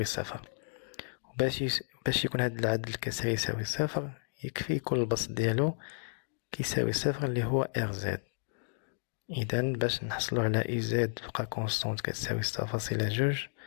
صفر. باش يكون هاد العدد الكسري يساوي صفر يكفي يكون البسط ديالو كيساوي صفر اللي هو rz. إذا باش نحصلو على uz تبقى كونستونت كتساوي 6.2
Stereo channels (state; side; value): silent; right; digital silence